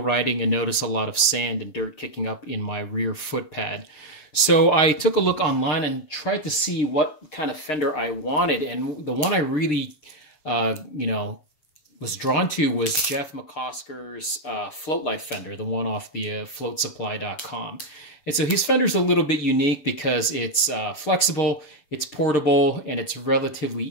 riding and noticed a lot of sand and dirt kicking up in my rear foot pad. So I took a look online and tried to see what kind of fender I wanted, and the one I really, was drawn to was Jeff McCosker's Float Life fender, the one off the floatsupply.com. And so his fender's a little bit unique because it's flexible, it's portable, and it's relatively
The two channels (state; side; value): late; right; 7.0 ms